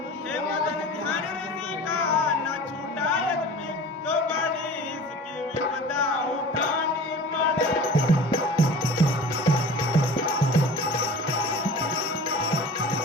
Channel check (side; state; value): both; normal; correlation 0.40